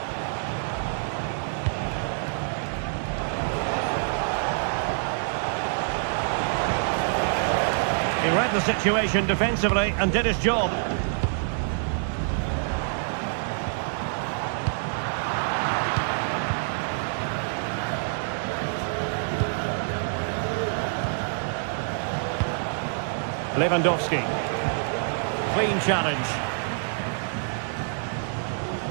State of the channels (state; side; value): silent; left; digital silence